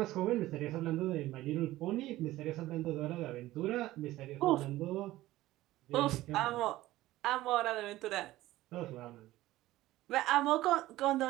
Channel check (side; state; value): left; quieter; 16.4 dB